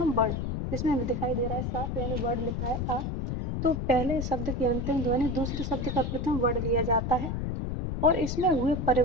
वर्ण, जिसमें हमें दिखाई दे रहा है साफ, यानी वर्ण लिखा है आ, तो पहले शब्द की अंतिम ध्वनि दूसरे शब्द का प्रथम वर्ण लिया जाता है, और इसमें हुए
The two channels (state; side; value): noise; left; rumble, 2 dB below the sound